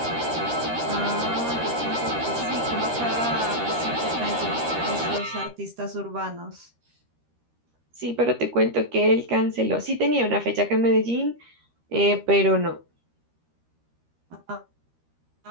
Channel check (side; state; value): left; late; 13 ms